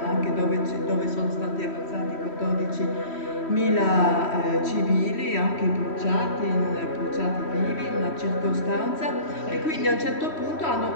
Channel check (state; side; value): late; right; 3.1 ms